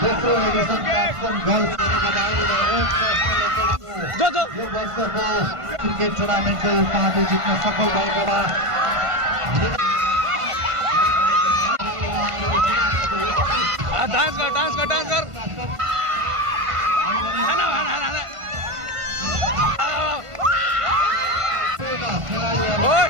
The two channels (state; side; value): late; left; 1.5 ms